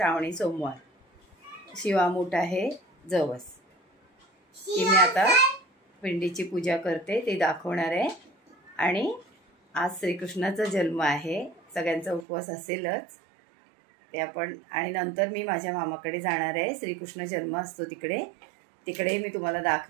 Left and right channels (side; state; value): left; drops out; at 12.2 s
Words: सोमवार. शिवामूठ आहे जवस. ती मी आता पिंडीची पूजा करते ते दाखवणार आहे. आणि आज श्रीकृष्णाचा जन्म आहे. सगळ्यांचा उपवास असेलच ते आपण. आणि नंतर मी माझ्या मामाकडे जाणार आहे. श्रीकृष्ण जन्म असतो तिकडे मी तुम्हाला